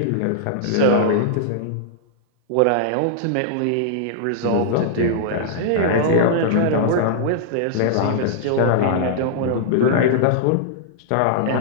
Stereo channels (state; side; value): different; both; correlation -0.01